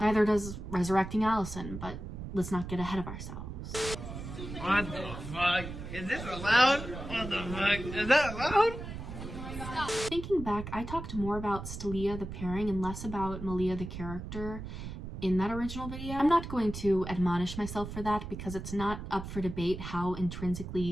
Neither does resurrecting Allison, but let's not get ahead of ourselves. What the fuck? Is this allowed? What the fuck? Is that allowed? Thinking back, I talked more about Stylia the pairing and less about Malia the character in that original video. I'm not going to admonish myself for that because it's not up for debate how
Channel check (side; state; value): right; noise; rumble, 8 dB below the sound